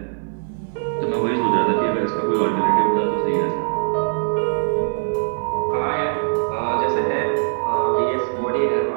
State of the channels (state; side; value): silent; left; 58 dB below the other